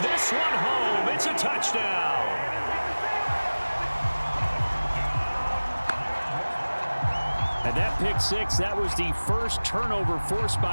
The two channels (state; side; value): inverted; both; correlation -1.00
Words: this one home. It's a touchdown. And that pick six, that was the first turnover forced